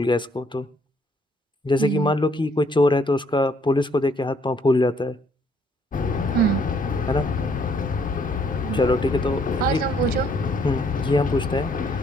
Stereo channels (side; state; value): both; normal; correlation 0.66